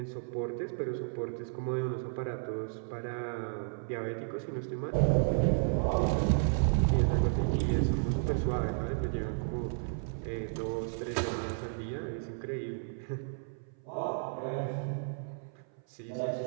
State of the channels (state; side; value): silent; left; 56 dB below the other